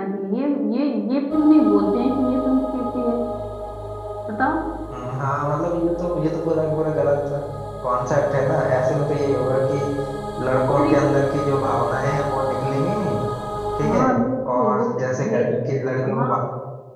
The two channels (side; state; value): both; identical; correlation 1.00